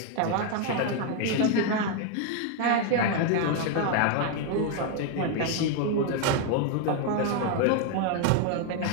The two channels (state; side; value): different; both; correlation 0.01